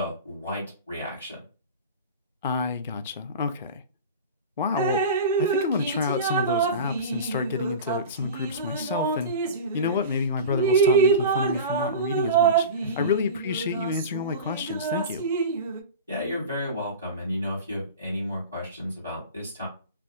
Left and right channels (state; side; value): inverted; both; correlation -0.31